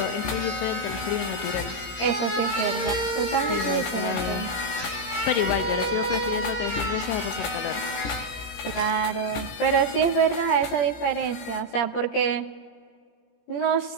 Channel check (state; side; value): late; right; 17 ms